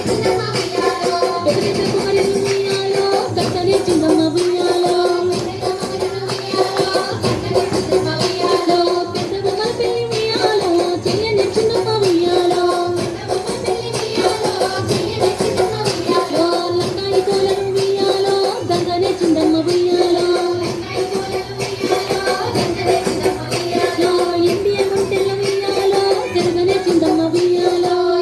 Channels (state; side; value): identical; both; correlation 1.00